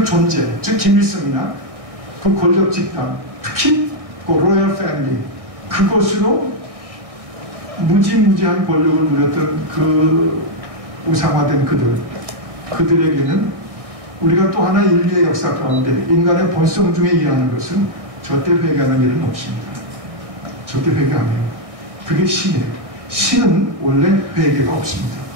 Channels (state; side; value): late; left; 1.6 ms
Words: 존재, 즉 김일성이나 그 권력 집단, 특히 그 로열 패밀리, 그것으로 무지무지한 권력을 누렸던 그 우상화된 그들에게는 우리가 또 하나 인류의 역사 가운데 인간의 본성 중에 일하는 것은 절대 회개하는 일은 없습니다. 절대 회개 안 해요. 그게 신이에요. 신은 원래 회개가 없습니다.